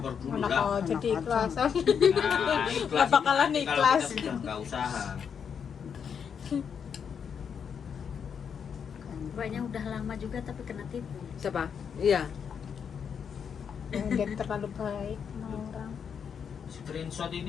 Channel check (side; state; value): right; quieter; 7.2 dB